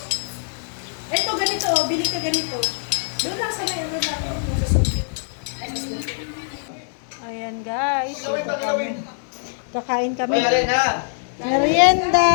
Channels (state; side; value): silent; right; digital silence